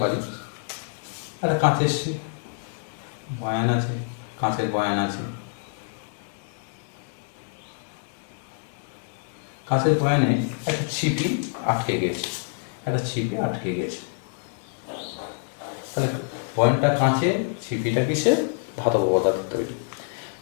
পারি একটা কাঁচের বয়ান আছে, কাঁচের বয়ান আছে, কাঁচের বয়ানে একটা ছিপি আটকে গেছে, তাহলে বয়ানটা কাঁচের, ছিপিটা কিসে? ধাতব পদার্থ তৈরি।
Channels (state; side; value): silent; right; digital silence